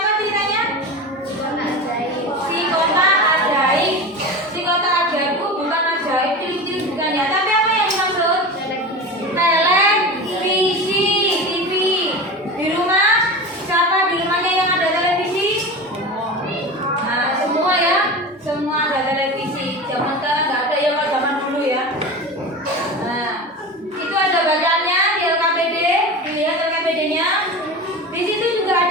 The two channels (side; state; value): both; normal; correlation 0.29